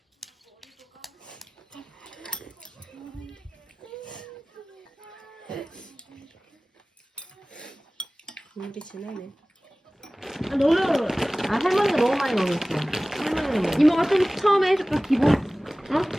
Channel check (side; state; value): both; normal; correlation 0.98